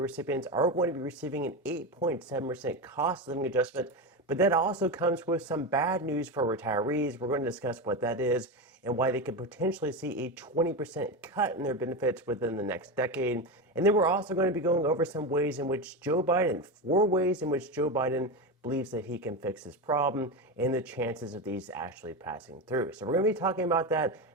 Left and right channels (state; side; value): normal; both; correlation 0.17